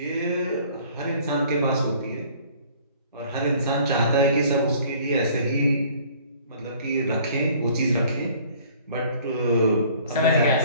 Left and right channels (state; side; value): inverted; both; correlation -0.54